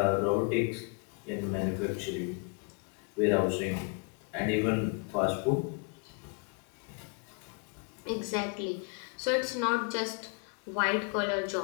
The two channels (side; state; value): right; quieter; 35.2 dB